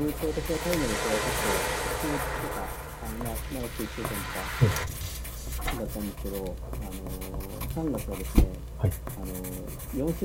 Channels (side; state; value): both; identical; correlation 1.00